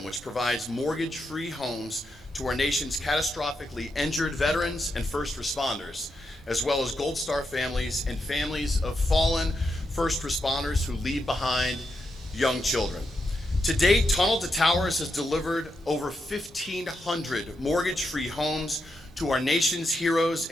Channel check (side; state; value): both; normal; correlation 0.84